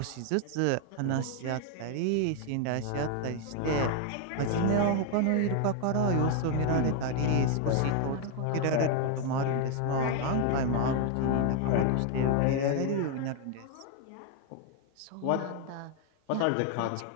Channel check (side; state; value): both; different; correlation 0.01